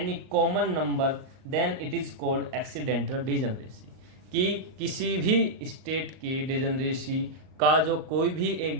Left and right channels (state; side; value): late; left; 38 ms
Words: common number then it is called accidental degeneracy। कि किसी भी स्टेट की डिजेनरेसी का जो कोई भी एक